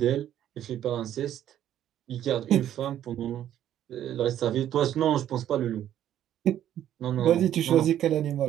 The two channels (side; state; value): left; quieter; 11.3 dB